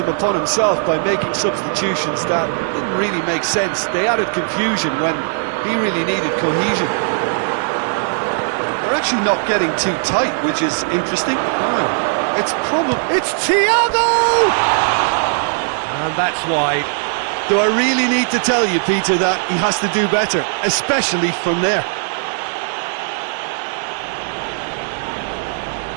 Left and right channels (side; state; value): left; silent; digital silence